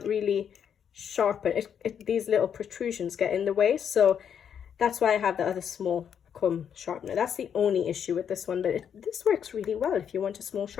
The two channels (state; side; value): quieter; right; 8.2 dB